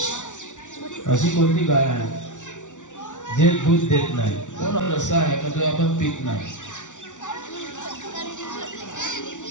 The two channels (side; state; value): right; late; 0.86 ms